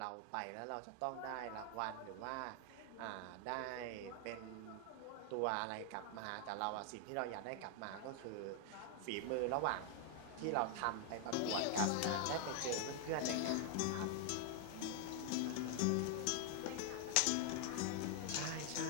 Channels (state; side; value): different; both; correlation 0.00